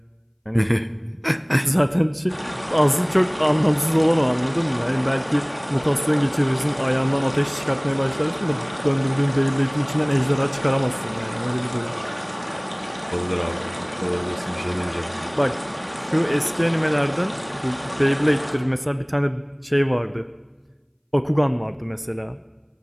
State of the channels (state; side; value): identical; both; correlation 1.00